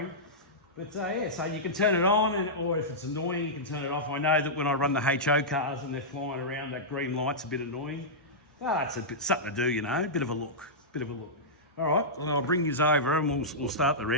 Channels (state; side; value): normal; both; correlation -0.12